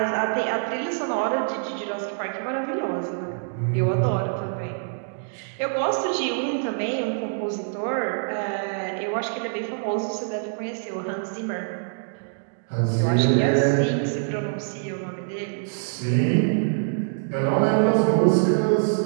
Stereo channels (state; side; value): silent; left; digital silence